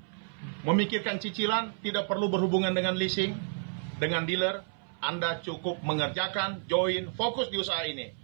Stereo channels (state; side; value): silent; left; 57 dB below the other